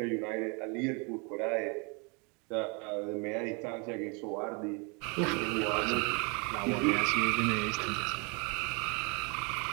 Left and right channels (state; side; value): quieter; left; 32.5 dB